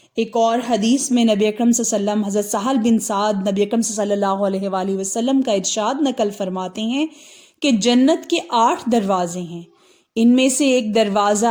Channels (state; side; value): identical; both; correlation 1.00